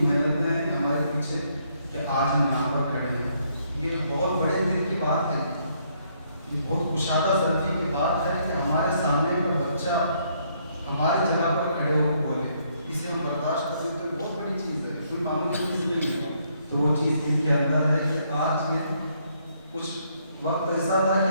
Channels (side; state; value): both; inverted; correlation -0.71